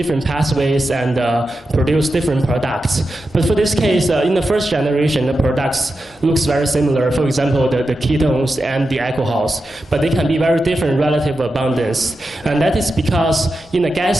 pathways and produce different products. But for this case, in the first generation, the products looks very similar. For example, the ketones and the alcohols, but they can be very different relative abundance. And that is because in the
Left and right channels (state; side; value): normal; both; correlation 0.90